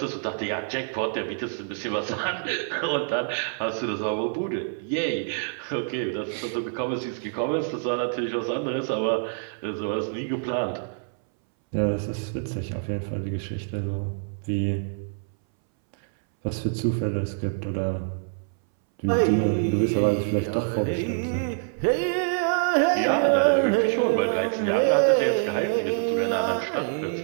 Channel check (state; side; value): silent; left; 61 dB below the other